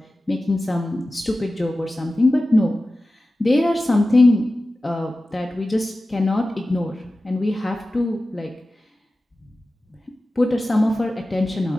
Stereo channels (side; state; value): both; normal; correlation 0.95